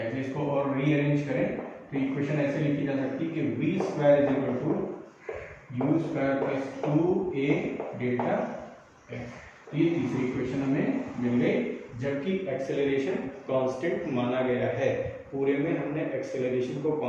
इसको और रीअरेंज करें तो इक्वेशन ऐसे लिखी जा सकती है कि v square is equal to u square plus 2a delta x. तो ये तीसरी इक्वेशन हमें मिल गई, जबकि एक्सेलरेशन कांस्टेंट माना गया है। पूरे में हमने एक्सेलरेशन को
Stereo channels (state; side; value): identical; both; correlation 1.00